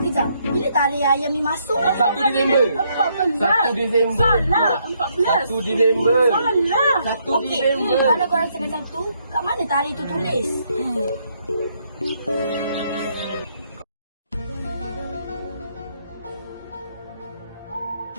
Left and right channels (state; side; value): inverted; both; correlation -0.73